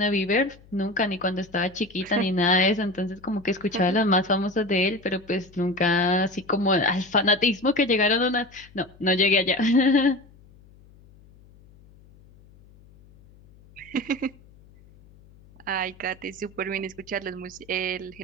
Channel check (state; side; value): noise; left; hum, 26 dB below the sound